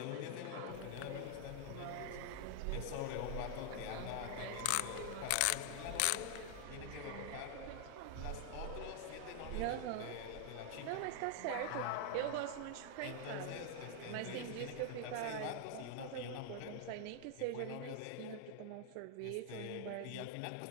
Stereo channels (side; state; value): both; different; correlation 0.00